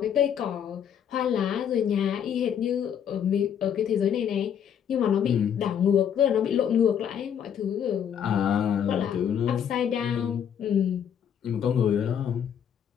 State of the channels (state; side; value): quieter; right; 8.6 dB